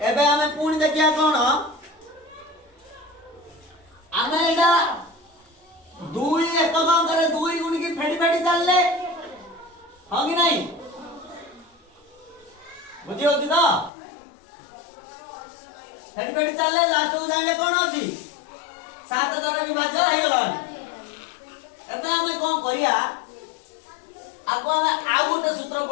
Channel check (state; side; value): drops out; right; at 13.9 s